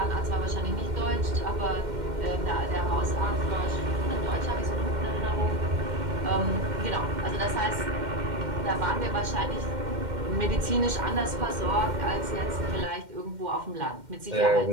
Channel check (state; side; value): late; left; 2.1 ms